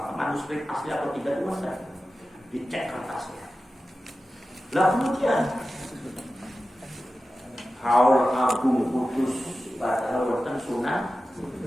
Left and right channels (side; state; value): both; normal; correlation 0.94